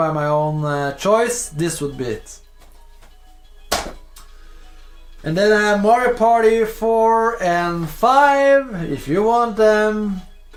my own choice, this would be it. And then Mario Party 4 and 5, if you want them,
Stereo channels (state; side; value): identical; both; correlation 1.00